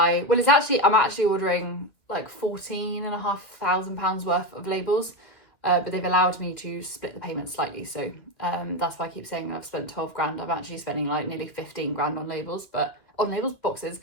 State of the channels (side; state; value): right; late; 2.3 ms